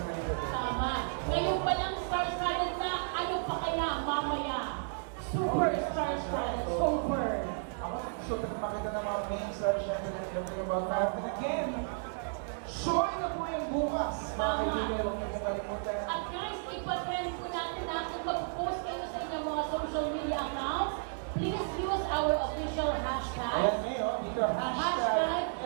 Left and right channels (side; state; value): left; silent; digital silence